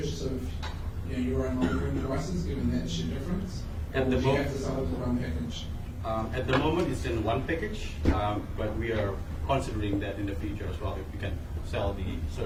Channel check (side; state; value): both; identical; correlation 1.00